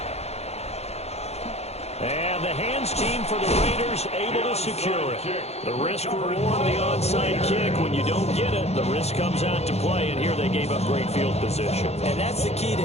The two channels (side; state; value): right; late; 0.31 ms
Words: And the hands team for the Raiders able to secure it. The risk-reward of the onside kick. When you don't get it, the risk comes out to play, and here they gave up great field position. And that's the key to